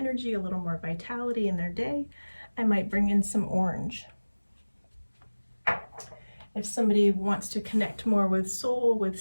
a little more vitality in their day, I might bring in some orange. If somebody wants to connect more with soul, with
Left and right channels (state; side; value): inverted; both; correlation -1.00